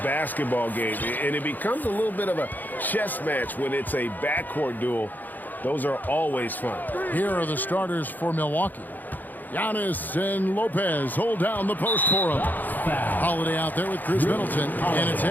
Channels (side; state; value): right; late; 0.085 ms